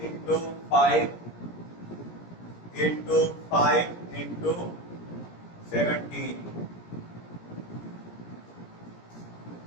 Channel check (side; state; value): right; late; 17 ms